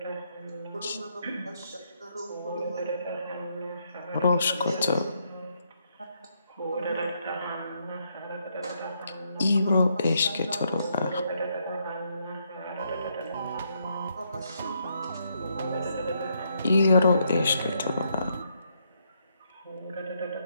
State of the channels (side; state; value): both; inverted; correlation -0.76